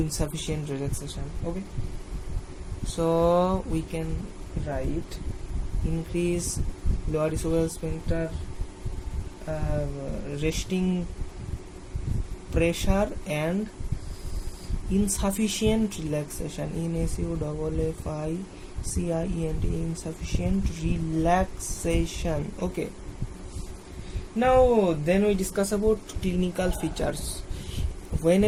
relaxation. Okay, so we can write increase lower esophageal sphincter resting pressure and insufficient relaxation. INSUFFICIENT, insufficient relaxation. Okay, now then we discuss about clinical features. When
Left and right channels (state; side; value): identical; both; correlation 1.00